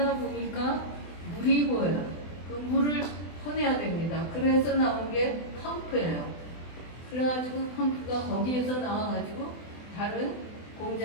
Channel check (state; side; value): late; right; 24 ms